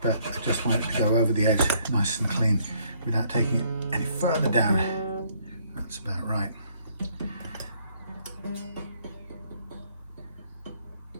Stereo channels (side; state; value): both; inverted; correlation -0.66